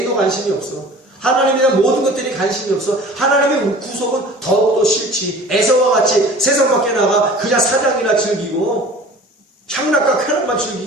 관심이 없어? 하나님에 대한 모든 것들이 관심이 없어. 하나님의 구속은 더욱더 싫지. 에서와 같이 세상 밖에 나가 그냥 사냥이나 즐기고 향락과 쾌락만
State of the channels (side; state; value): both; normal; correlation 0.44